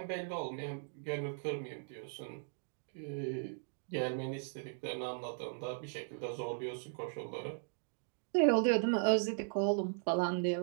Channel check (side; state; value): left; silent; digital silence